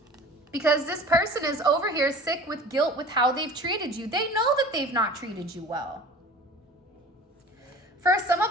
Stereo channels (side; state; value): both; normal; correlation 0.41